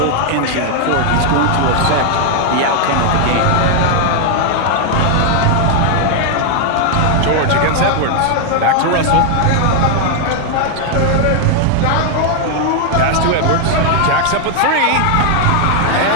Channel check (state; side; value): different; both; correlation 0.00